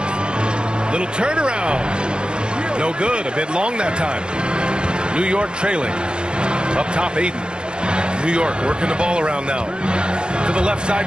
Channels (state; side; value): late; left; 0.051 ms